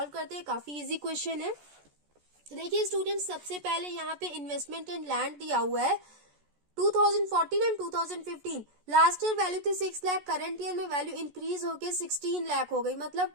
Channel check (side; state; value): left; late; 14 ms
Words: करते हैं। काफी इजी क्वेश्चन है। तो देखिए स्टूडेंट्स, सबसे पहले यहाँ पे इन्वेस्टमेंट इन लैंड दिया हुआ है 2014 एंड 2015। लास्ट ईयर वैल्यू थी 6 लाख, करंट ईयर में वैल्यू इंक्रीज होके 16 लाख हो गई।